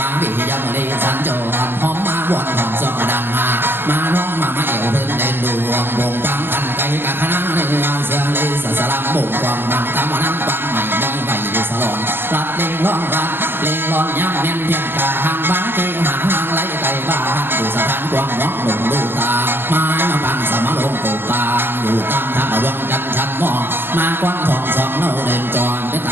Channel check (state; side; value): late; left; 0.10 ms